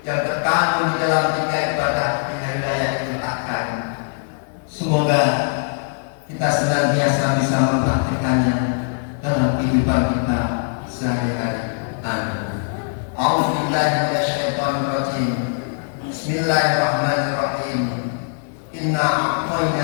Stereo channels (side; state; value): right; silent; 65 dB below the other